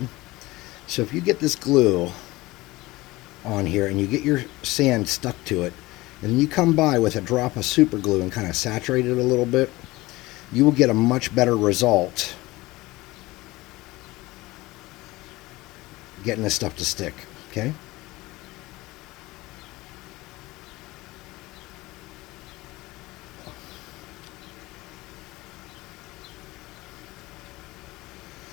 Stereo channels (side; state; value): right; quieter; 20.0 dB